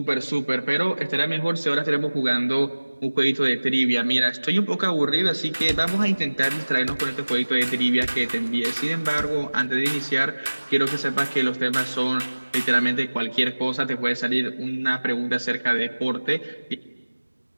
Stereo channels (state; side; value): inverted; both; correlation -1.00